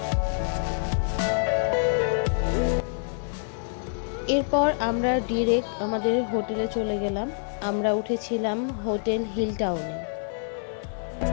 এরপর আমরা ডিরেক্ট আমাদের হোটেলে চলে গেলাম। আমরা উঠেছিলাম হোটেল হিল টাউনে।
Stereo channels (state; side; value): silent; right; digital silence